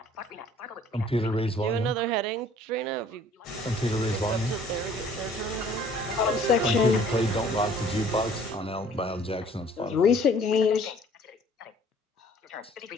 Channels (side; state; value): both; normal; correlation 0.55